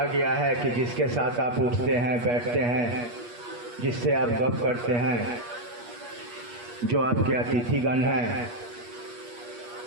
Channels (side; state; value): left; late; 8.4 ms